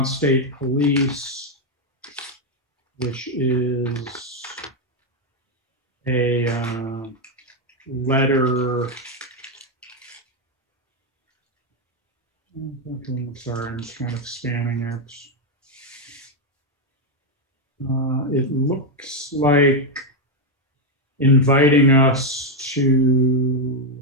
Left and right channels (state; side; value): normal; both; correlation 0.03